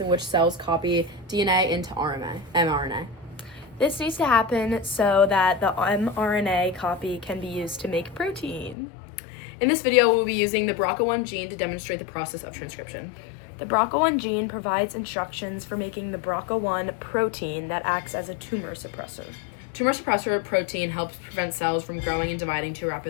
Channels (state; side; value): drops out; right; at 8.8 s